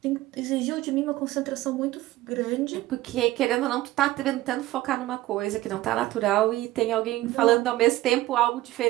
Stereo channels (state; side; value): quieter; left; 16.7 dB